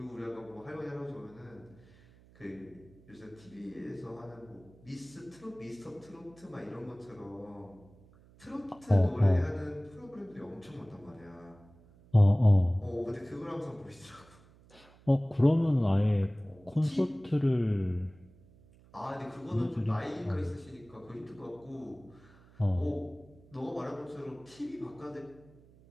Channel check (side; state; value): right; noise; hum, 25 dB below the sound